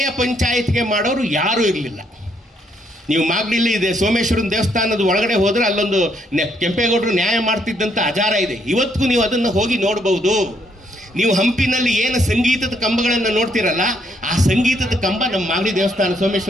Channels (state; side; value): normal; both; correlation 0.71